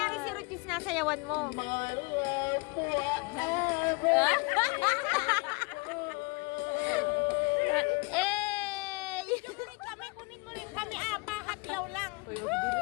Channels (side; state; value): right; quieter; 27.9 dB